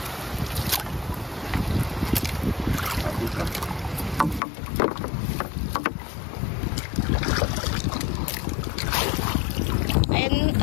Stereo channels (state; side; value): drops out; right; at 4.4 s